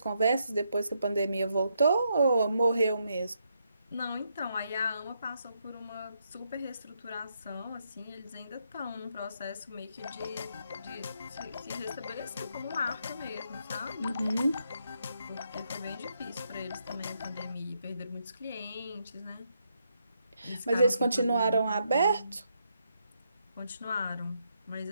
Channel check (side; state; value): both; inverted; correlation -0.79